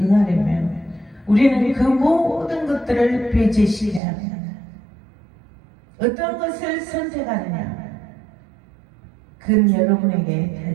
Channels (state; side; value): drops out; left; at 4.0 s